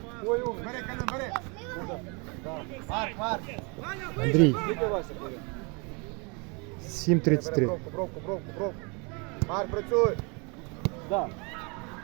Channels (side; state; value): left; quieter; 32.0 dB